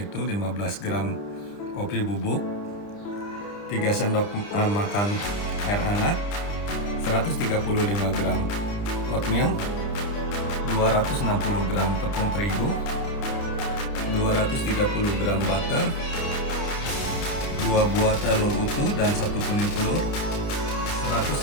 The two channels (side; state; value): right; late; 30 ms